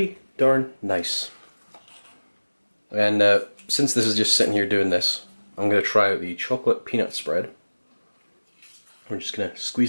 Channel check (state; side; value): inverted; both; correlation -1.00